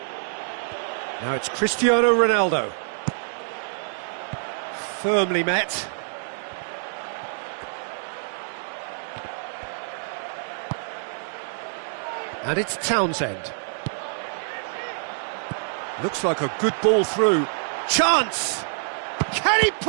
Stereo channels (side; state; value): left; silent; digital silence